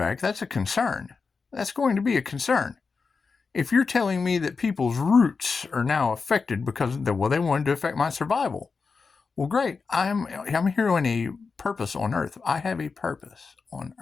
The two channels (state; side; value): quieter; right; 4.8 dB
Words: that's a concern. That's going to be a concern. If you're telling me that people's roots are now affected because they wanted to affect my survival, well, great. I'm here on a purpose on Earth. I have a purpose on